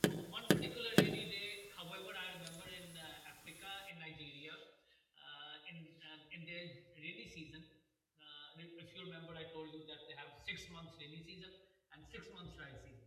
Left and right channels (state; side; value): identical; both; correlation 1.00